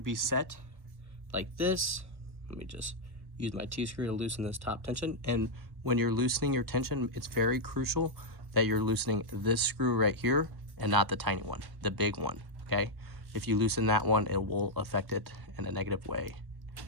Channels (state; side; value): late; left; 1.1 ms